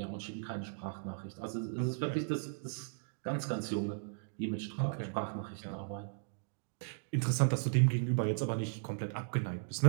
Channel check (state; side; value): silent; left; digital silence